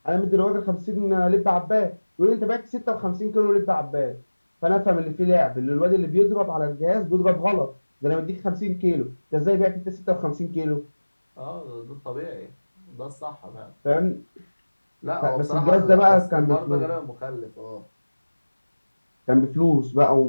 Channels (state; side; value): inverted; both; correlation -1.00